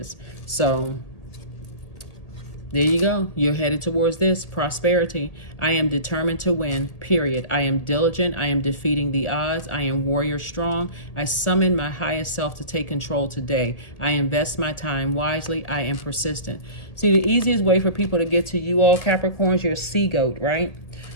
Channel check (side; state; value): right; late; 1.8 ms